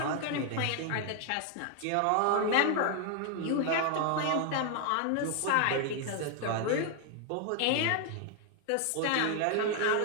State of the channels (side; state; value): both; different; correlation 0.00